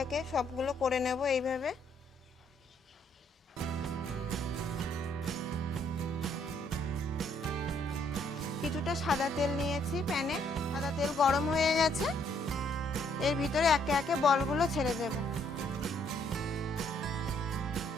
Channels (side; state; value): both; normal; correlation 0.68